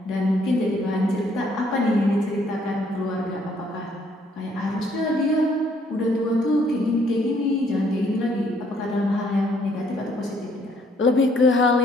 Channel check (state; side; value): normal; both; correlation 0.66